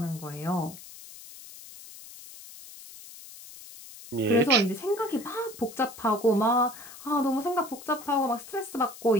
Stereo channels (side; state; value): left; noise; hiss, 16 dB below the sound